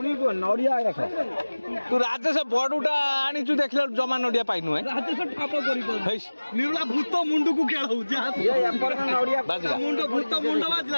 को नड़िया रखा तू राजेश बड़ुटा आनी चु देखले जमा नड़िया पाइनु है राजेश ठाप करी निरुला भूत मुंडू को खेल हो जा ये एपर नड़िया बाजला मुंडो भूत मुंडो बाजला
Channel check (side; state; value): both; inverted; correlation -1.00